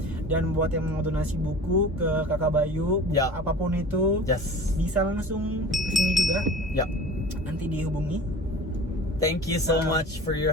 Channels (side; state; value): both; normal; correlation 0.39